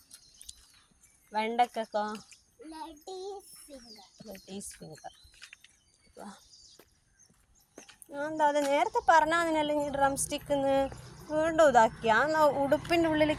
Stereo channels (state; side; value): identical; both; correlation 1.00